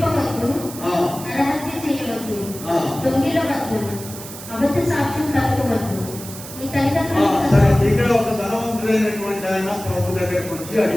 అబద్ధ సాక్ష్యం తప్పవద్దు, నీ తల్లిదండ్రులు సరే, ఇక్కడ ఒక ధనవంతుడైనటువంటి ఆయన ప్రభు దగ్గరికి వచ్చి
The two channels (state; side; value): noise; right; hiss, 13 dB below the sound